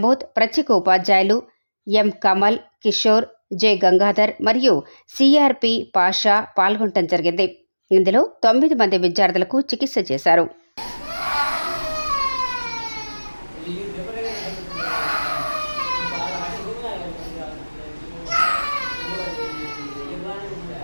ప్రత్యేక ఉపాధ్యాయులు ఎం కమల్, కిషోర్, జె గంగాధర్ మరియు సిఆర్పి పాషా పాల్గొనడం జరిగింది. ఇందులో 9 మంది విద్యార్థులకు చికిత్స చేశారు.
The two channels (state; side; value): inverted; both; correlation -1.00